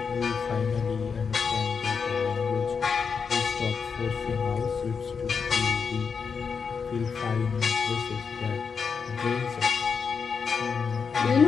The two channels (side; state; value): right; quieter; 5.8 dB